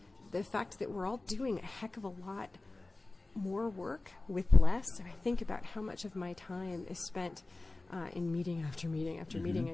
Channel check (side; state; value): right; quieter; 3.1 dB